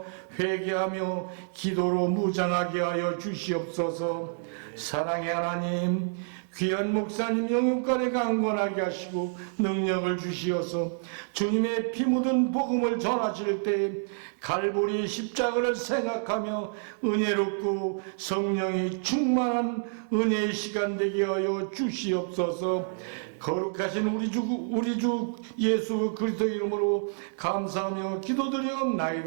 회개하며 기도로 무장하게 하여 주시옵소서. 사랑의 하나님, 귀한 목사님 영육간에 강건하게 하시고 능력을 주시어서 주님의 피 묻은 복음을 전하실 때 갈보리 십자가를 생각하며 은혜롭고 성령이 충만한 은혜의 시간 되게 하여 주시옵소서. 거룩하신 우리 주 예수 그리스도 이름으로 감사하며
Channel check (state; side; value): silent; left; digital silence